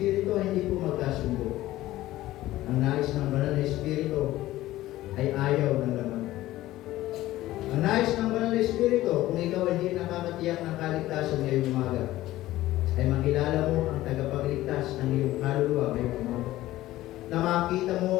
ay hindi po magkasundo. Ang nais ng banal na Espiritu ay ayaw ng laman. Ang nais ng banal na Espiritu, kung ikaw hindi nakakatiyak ng kaligtasan ngayong umaga, ay makilala mo ang tagapagligtas ng iyong kaluluwa ngayong umaga. Na makita mo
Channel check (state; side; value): quieter; right; 15.9 dB